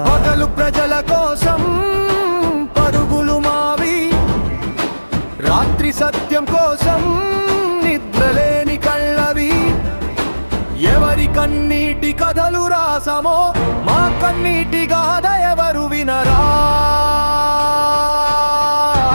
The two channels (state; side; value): inverted; both; correlation -1.00